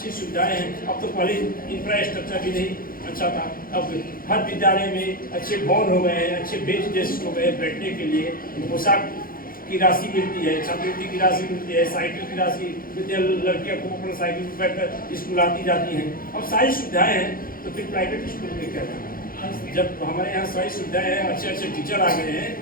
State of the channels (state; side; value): late; right; 0.42 ms